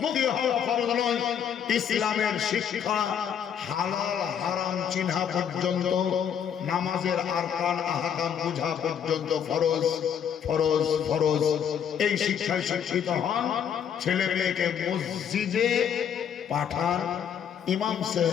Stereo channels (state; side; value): quieter; right; 8.4 dB